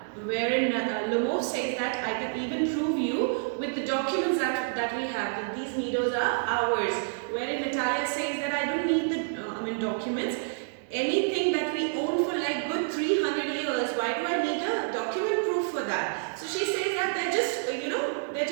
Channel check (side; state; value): left; silent; digital silence